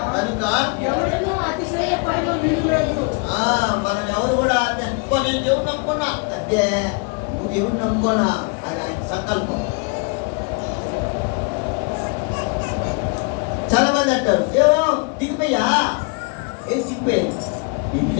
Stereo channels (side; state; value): right; quieter; 32.9 dB